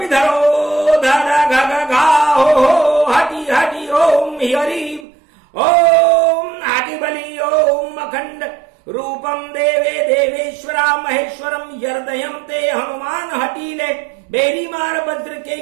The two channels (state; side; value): drops out; left; at 5.1 s